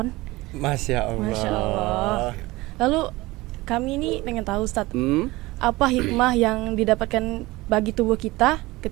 Masya Allah. Masya Allah. Lalu kami ini pengen tahu Ustadz, apa hikmah yang didapatkan bagi tubuh kita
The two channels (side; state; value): left; quieter; 20.4 dB